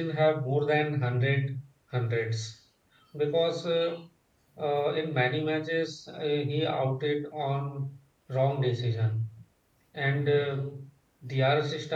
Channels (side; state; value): both; identical; correlation 1.00